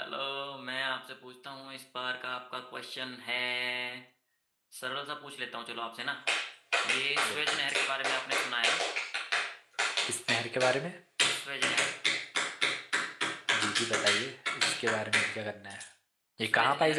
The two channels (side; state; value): both; identical; correlation 1.00